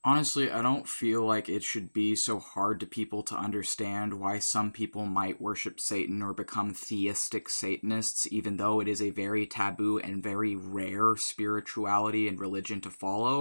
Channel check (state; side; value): inverted; both; correlation -1.00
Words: Honestly, I don't feel like it should be so hard to people to understand why some people might worship Satan or become theistic Satanists, even though it is a very taboo and very rare spirituality and religion to